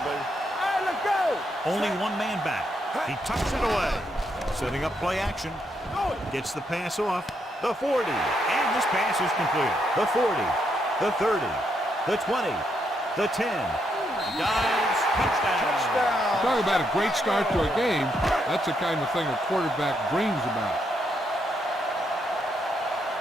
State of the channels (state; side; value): normal; both; correlation 0.78